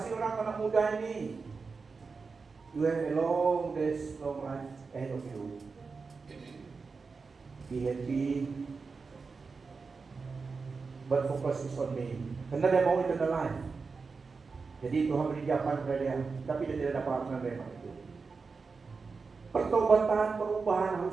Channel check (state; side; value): quieter; left; 4.6 dB